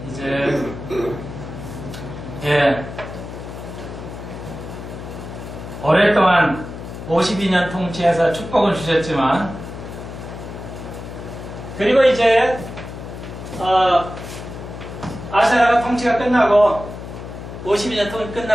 이제 오랫동안 52년 통치해서 축복을 주셨지만, 그리고 이제 아샤라가 통치가 끝나고 52년 통치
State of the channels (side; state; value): left; noise; hum, 11 dB below the sound